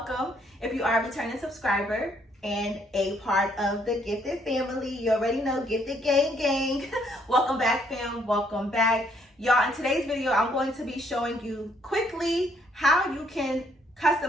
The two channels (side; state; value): both; normal; correlation 0.68